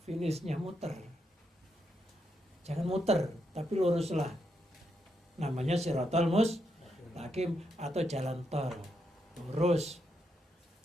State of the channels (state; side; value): normal; both; correlation 0.81